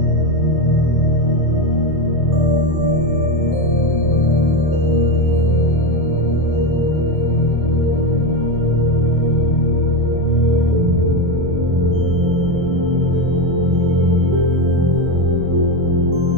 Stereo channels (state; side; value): late; left; 24 ms